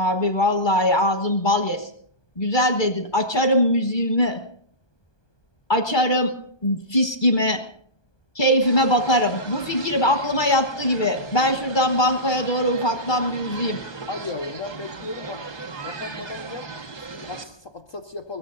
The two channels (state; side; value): late; right; 1.2 ms